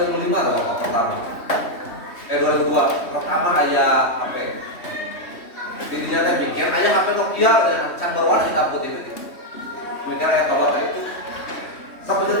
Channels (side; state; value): right; late; 3.2 ms